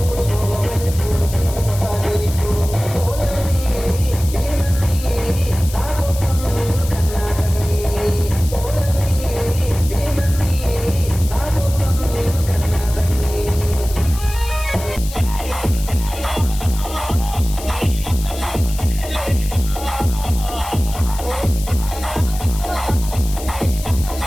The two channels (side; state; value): left; noise; hiss, 13 dB below the sound